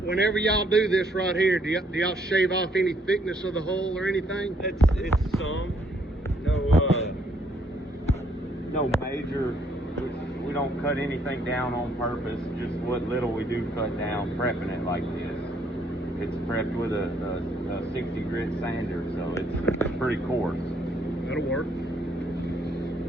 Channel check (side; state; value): both; normal; correlation 0.68